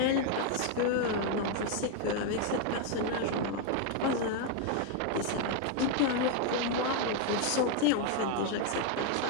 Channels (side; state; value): both; different; correlation 0.01